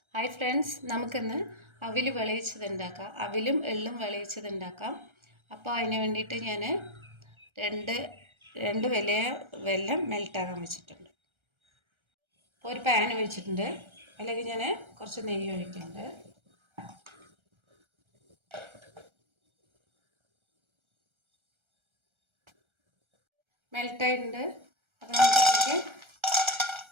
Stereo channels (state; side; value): late; left; 1.3 ms